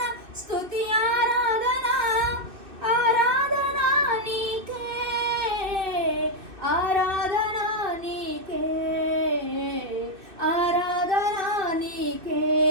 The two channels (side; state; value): left; late; 2.6 ms